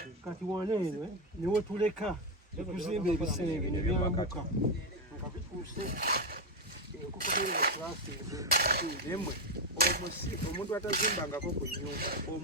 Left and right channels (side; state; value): both; normal; correlation 0.07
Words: kati waneeno niwe tuleka ekuzimba ebisenge nebyambuka nga bituuse omuntu atazimbangako ku nnyumba